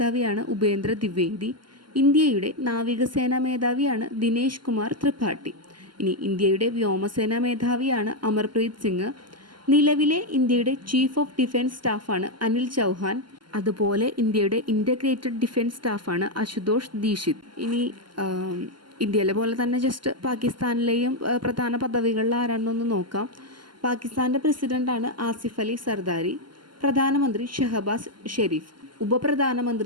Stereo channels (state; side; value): late; left; 0.71 ms